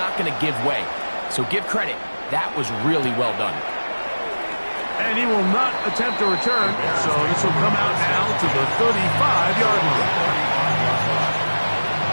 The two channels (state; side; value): inverted; both; correlation -1.00